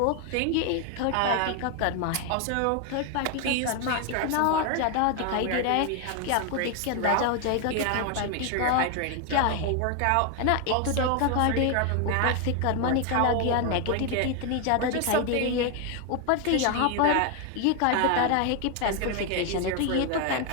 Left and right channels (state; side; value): different; both; correlation 0.01